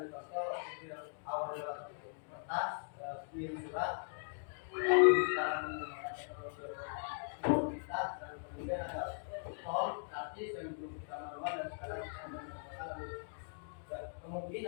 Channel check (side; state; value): right; silent; digital silence